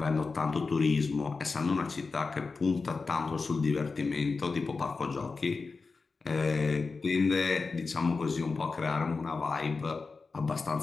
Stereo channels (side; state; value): right; quieter; 4.3 dB